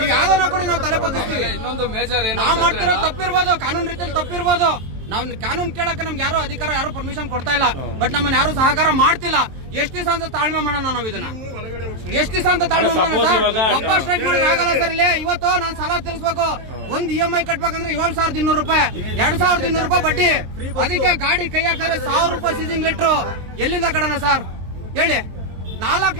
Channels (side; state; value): left; late; 23 ms